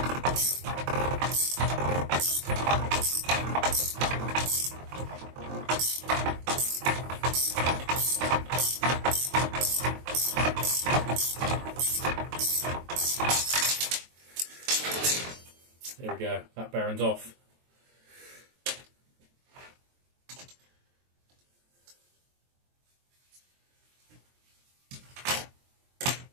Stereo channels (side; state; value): left; late; 23 ms